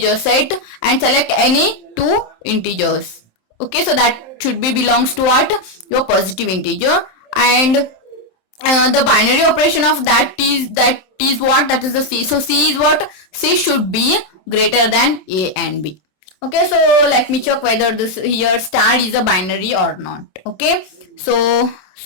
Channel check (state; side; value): late; right; 27 ms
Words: set and select any two integers. Okay, so that should be belongs to what? Your positive integer, and the binary operation of that is what? That is the C. So C is what? C should be greater than A and B. Okay, so let me check whether this here star is a binary or not. Okay, so